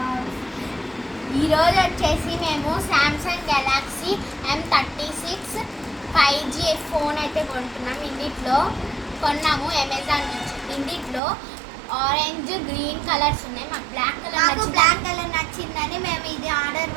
ఈరోజు వచ్చేసి మేము Samsung Galaxy M36 5G phone అయితే కొంటున్నాం. ఇందులో కొన్నాము అమెజాన్ నుంచి. ఇందులో ఆరెంజ్ గ్రీన్ కలర్స్ ఉన్నాయి. మాకు బ్లాక్ కలర్ నచ్చిందని మేము ఇది ఆర్డర్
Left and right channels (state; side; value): drops out; left; at 11.2 s